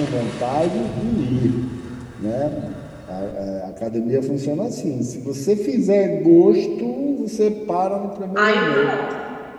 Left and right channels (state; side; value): identical; both; correlation 1.00